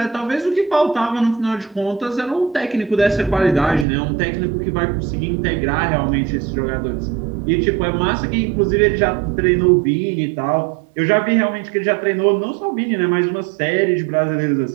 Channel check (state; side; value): drops out; left; at 3.9 s